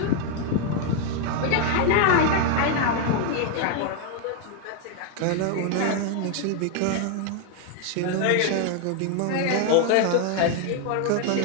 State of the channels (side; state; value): both; different; correlation 0.01